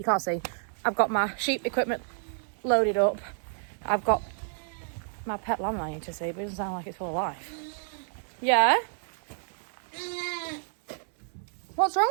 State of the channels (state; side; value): silent; left; 58 dB below the other